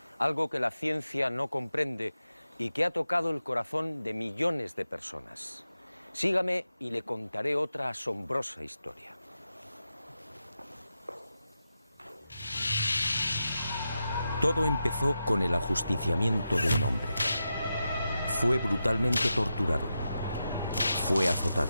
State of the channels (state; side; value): inverted; both; correlation -0.89